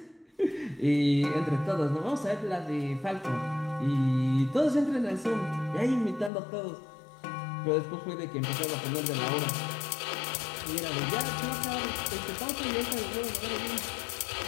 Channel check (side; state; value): right; drops out; at 6.3 s